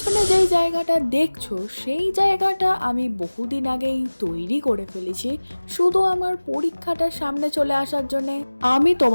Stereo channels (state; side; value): inverted; both; correlation -1.00